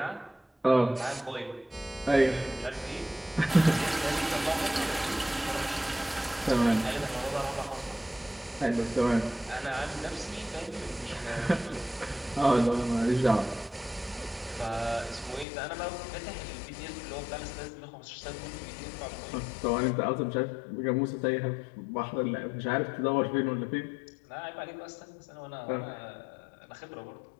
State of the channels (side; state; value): right; drops out; at 15.5 s